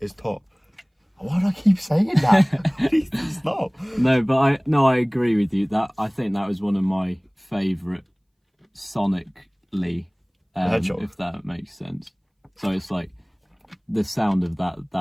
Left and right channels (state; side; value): identical; both; correlation 1.00